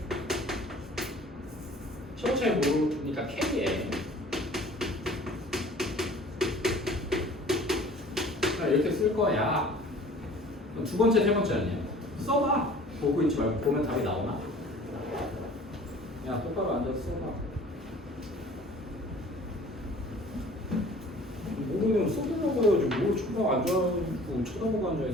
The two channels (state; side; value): normal; both; correlation 0.48